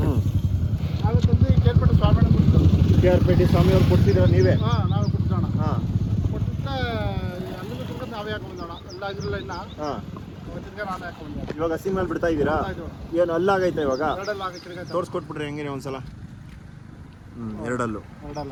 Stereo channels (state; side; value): identical; both; correlation 1.00